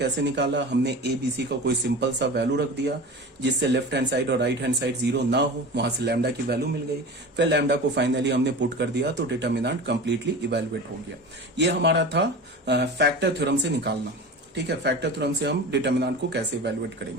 निकाला, हमने a b c का कोई सिंपल सा वैल्यू रख दिया जिससे लेफ्ट हैंड साइड और राइट हैंड साइड 0 ना हो, वहां से लैम्डा की वैल्यू मिल गई। फिर लैम्डा को फाइनली हमने पुट कर दिया, तो डिटरमिनेंट कंप्लीटली इवेलुएट हो गया। ये हमारा था फैक्टर थ्योरम से निकालना। ठीक है, फैक्टर थ्योरम से हम डिटरमिनेंट को कैसे इवेलुएट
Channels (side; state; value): both; normal; correlation 0.33